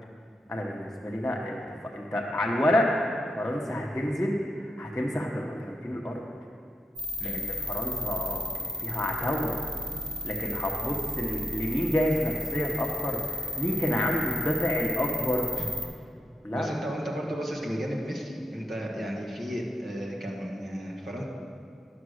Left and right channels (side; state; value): both; normal; correlation 0.80